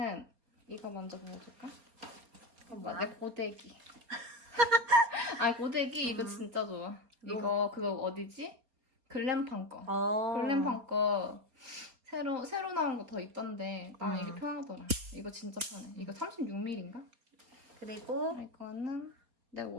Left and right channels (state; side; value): late; left; 4.3 ms